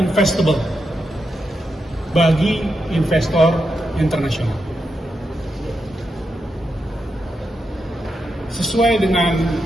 bagi investor internasional. Sesuai dengan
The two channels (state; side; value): normal; both; correlation 0.85